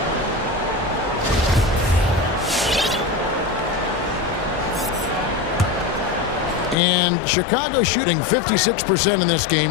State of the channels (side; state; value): right; drops out; at 6.8 s